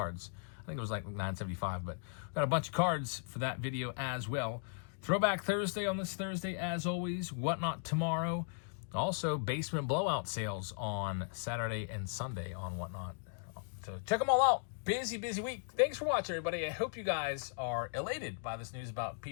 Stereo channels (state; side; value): silent; right; digital silence